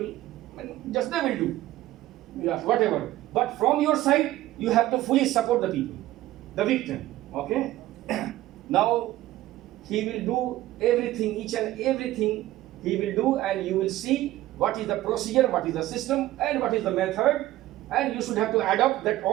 just they will do. Yeah, whatever. But from your side, you have to fully support the people, the victim. Okay? Now, he will do everything, each and everything he will do, and you will see what is the procedure, what is the system, and what is the method. And you should have to adopt that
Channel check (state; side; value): quieter; left; 15.6 dB